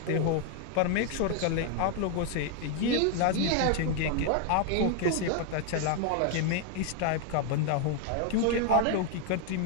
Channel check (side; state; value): both; different; correlation 0.00